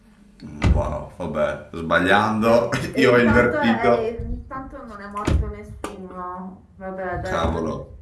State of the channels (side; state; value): both; identical; correlation 1.00